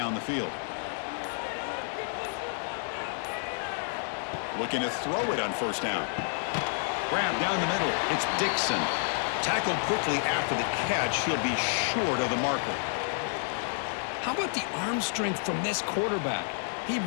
the field. Looking to throw it on first down. Grab down the middle. It's Dixon. Tackled quickly after the catch. He'll be short of the marker. How about the arm strength from this quarterback? He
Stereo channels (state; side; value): silent; right; digital silence